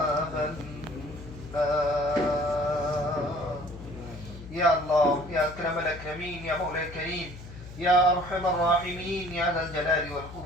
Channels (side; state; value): left; noise; hum, 14 dB below the sound